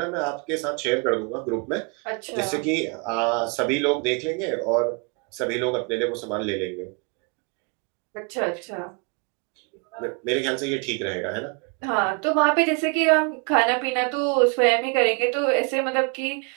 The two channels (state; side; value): quieter; left; 33.2 dB